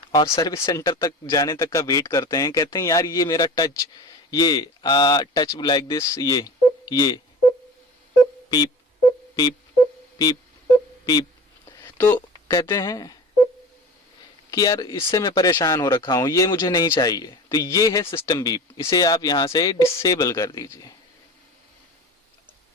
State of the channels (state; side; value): normal; both; correlation 0.36